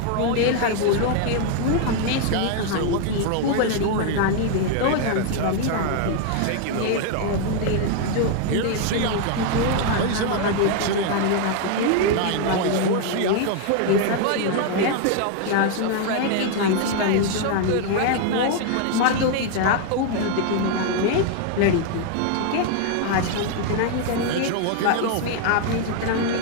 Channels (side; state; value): both; different; correlation 0.00